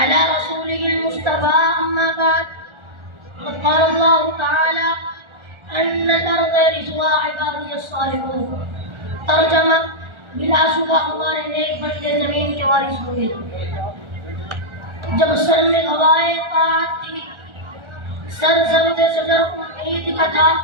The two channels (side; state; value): left; late; 1.4 ms